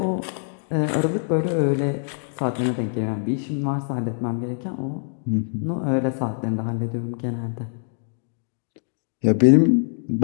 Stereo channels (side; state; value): right; silent; digital silence